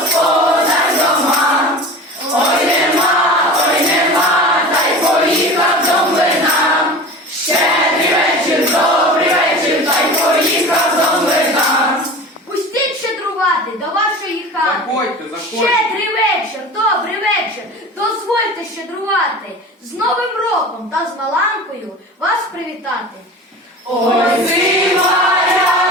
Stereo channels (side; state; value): both; normal; correlation 0.35